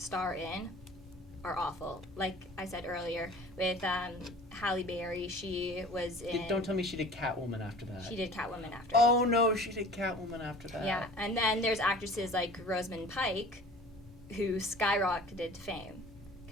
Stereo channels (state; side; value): normal; both; correlation 0.44